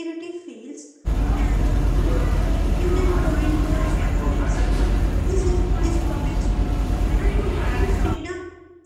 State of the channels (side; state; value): both; identical; correlation 1.00